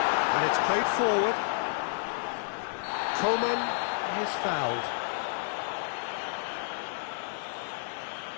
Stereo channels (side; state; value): right; silent; 57 dB below the other